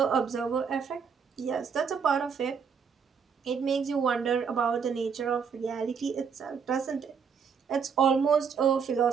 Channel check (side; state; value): left; quieter; 6.4 dB